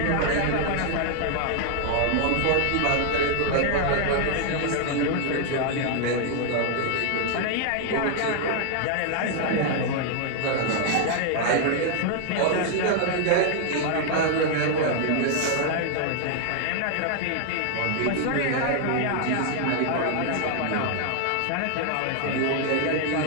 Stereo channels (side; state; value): both; different; correlation 0.00